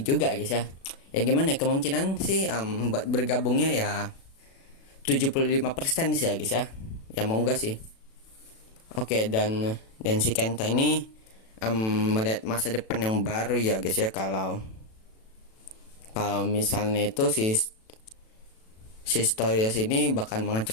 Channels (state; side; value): late; right; 36 ms